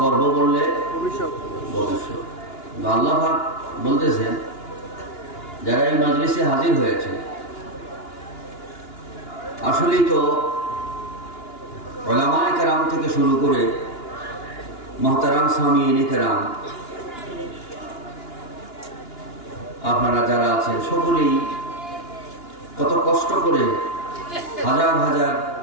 করব বললে ভবিষ্যৎ। আল্লাহ পাক বলতেছেন যারা এই মজলিসে হাজির হয়েছে, আসলেই তো উলামায়ে কেরাম থেকে শুরু করে মুহতারাম সামিঈনে কেরাম, আপনারা যারা আছেন সকলেই কত কষ্ট করে হাজার হাজার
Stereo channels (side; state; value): right; late; 2.9 ms